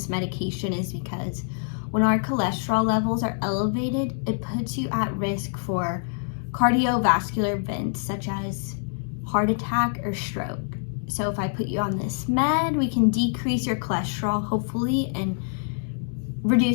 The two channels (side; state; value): right; silent; digital silence